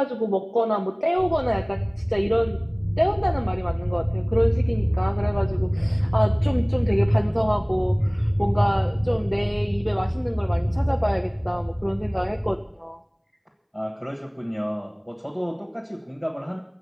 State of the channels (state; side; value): identical; both; correlation 1.00